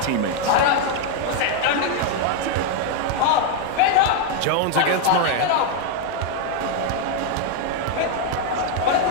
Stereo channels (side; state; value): both; different; correlation 0.00